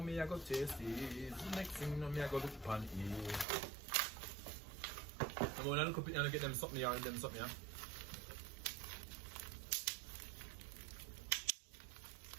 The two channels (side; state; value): left; drops out; at 3.5 s